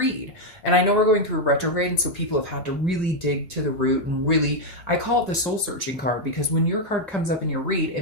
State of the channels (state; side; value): normal; both; correlation 0.01